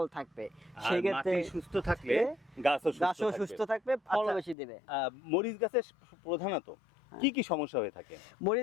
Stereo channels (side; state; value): right; drops out; at 4.5 s